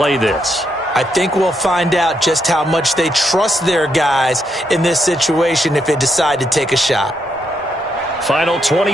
this. I think we'll find out just how much they trust their guys in this situation if they decide to take a shot. Final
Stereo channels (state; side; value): normal; both; correlation 0.79